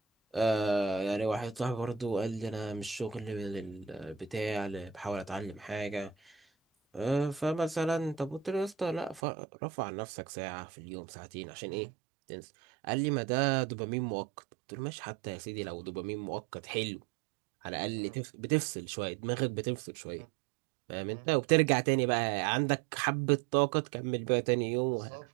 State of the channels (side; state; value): left; drops out; at 9.2 s